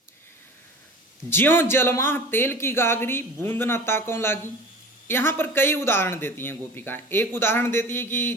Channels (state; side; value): normal; both; correlation 0.39